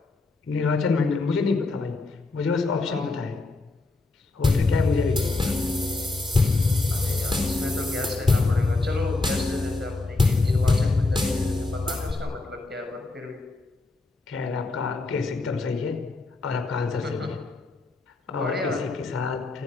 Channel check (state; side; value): quieter; right; 3.3 dB